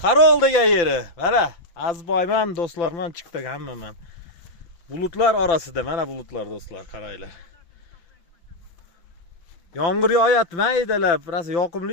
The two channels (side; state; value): right; late; 5.9 ms